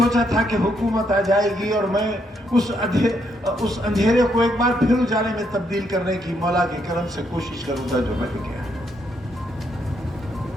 था कि हुकूमत आ जाएगी और मैं उस अंधेरे को एक बार फिर उजाले में तब्दील करने की मौला के करम से कोशिश करूंगा, जो रह गया।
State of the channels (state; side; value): normal; both; correlation 0.75